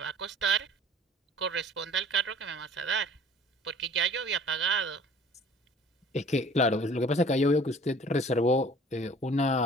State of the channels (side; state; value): both; normal; correlation 0.49